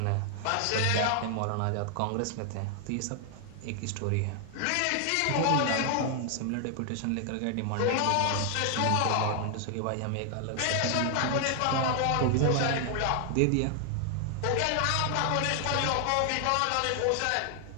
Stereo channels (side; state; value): both; different; correlation 0.00